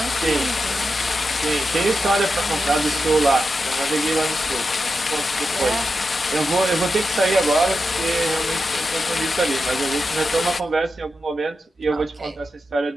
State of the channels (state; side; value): normal; both; correlation 0.89